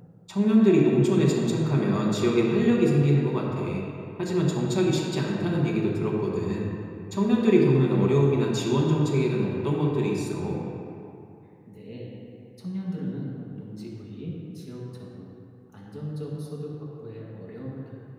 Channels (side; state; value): both; identical; correlation 1.00